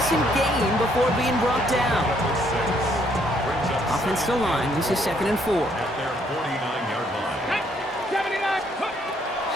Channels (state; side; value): normal; both; correlation 0.69